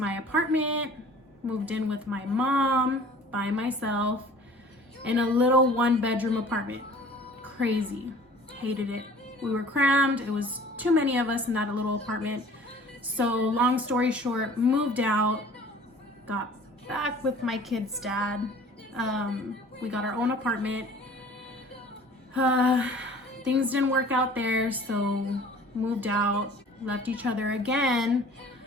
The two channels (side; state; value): both; normal; correlation 0.48